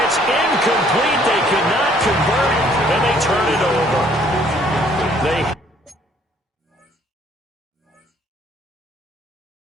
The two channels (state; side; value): normal; both; correlation 0.62